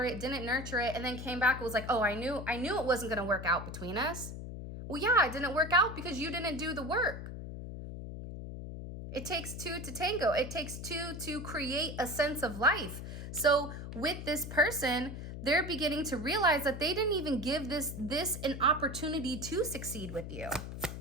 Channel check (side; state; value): left; noise; hum, 8 dB below the sound